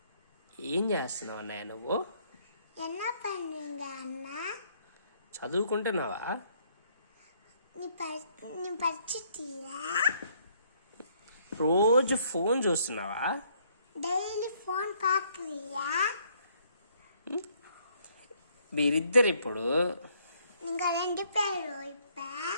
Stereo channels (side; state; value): both; inverted; correlation -0.67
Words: ఏం చేస్తున్నావు అన్నయ్య నువ్వు? చదువుకుంటున్నావా? రోజు ఫోన్ చూస్తున్నావా? డైలీ ఫోన్ పాకురియా? మీరిద్దరు ఇప్పుడు ఇంకా రెండు పేరు